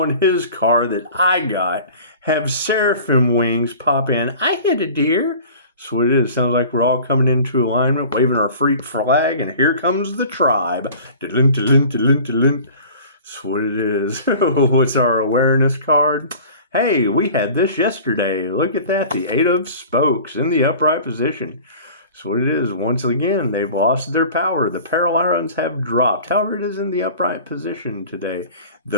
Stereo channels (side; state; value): both; inverted; correlation -0.43